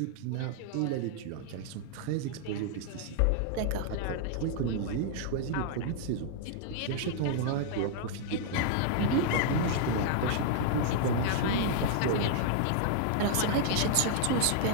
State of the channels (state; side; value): different; both; correlation -0.01